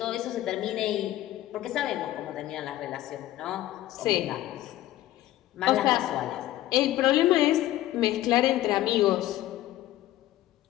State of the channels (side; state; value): right; quieter; 14.7 dB